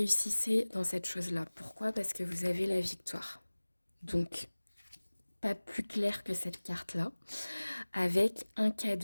dans cette chose-là. Pourquoi? Parce que vous avez la victoire. Donc, pas plus clair que cette carte-là, avec un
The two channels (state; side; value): inverted; both; correlation -1.00